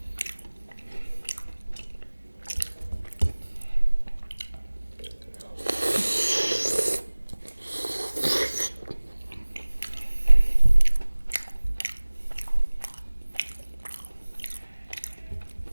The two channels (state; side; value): inverted; both; correlation -1.00